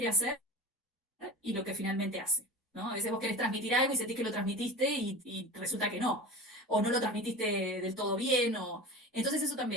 hacer y lo que finalmente hace. ¿No? A veces vos querés transmitir algo y sentís que lo transmitiste y resulta que no, o no lo transmitiste del todo bien, o... Entonces eso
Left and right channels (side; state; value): both; normal; correlation 0.33